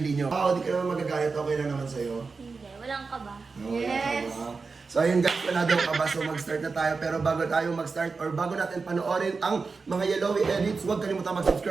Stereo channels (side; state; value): left; quieter; 4.5 dB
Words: nyo. Di ka naman magagalit, okay lang naman sa'yo. Hindi, walang kaba. Yes. So ayun guys, wala daw ka ba? So mag-start na tayo. Pero bago tayo mag-start or bago natin panoorin ang mga Yellowy edits, huwag kalimutan